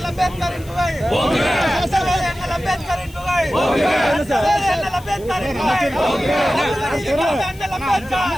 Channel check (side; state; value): left; noise; hiss, 22 dB below the sound